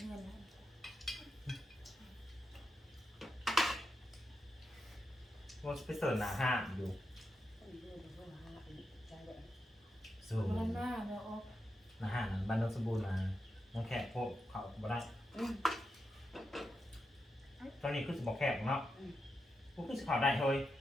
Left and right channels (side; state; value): both; normal; correlation 0.87